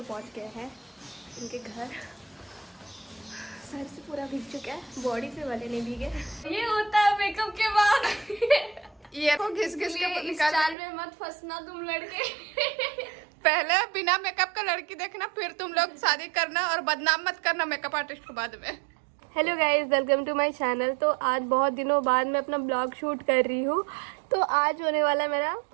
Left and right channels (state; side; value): drops out; left; at 10.8 s